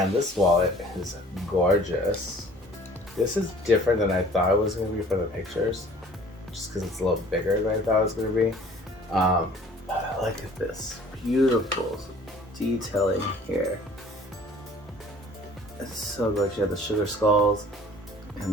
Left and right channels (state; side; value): normal; both; correlation 0.51